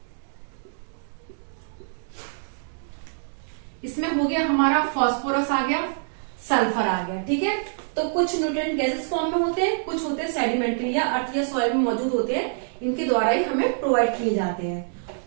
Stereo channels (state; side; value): silent; left; digital silence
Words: इसमें हो गया हमारा फास्फोरस आ गया, सल्फर आ गया। ठीक है, तो कुछ न्यूट्रिएंट गैसेस फॉर्म में होते हैं, कुछ होते हैं सेडिमेंट्री या अर्थ या सॉइल में मौजूद होते हैं, इनके द्वारा ही हमें प्रोवाइड किए जाते हैं।